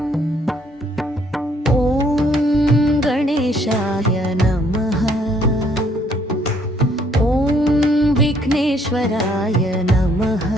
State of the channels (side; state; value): both; normal; correlation 0.65